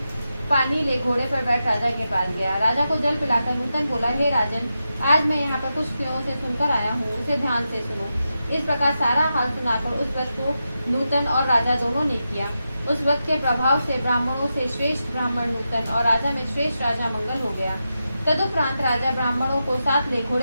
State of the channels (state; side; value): inverted; both; correlation -0.89